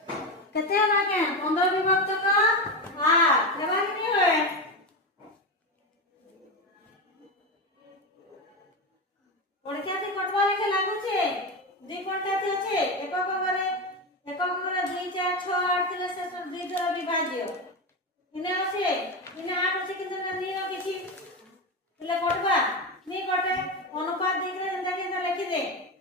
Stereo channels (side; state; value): both; normal; correlation 0.16